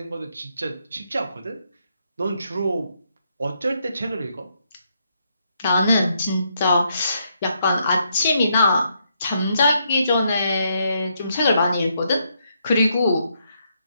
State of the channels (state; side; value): inverted; both; correlation -0.77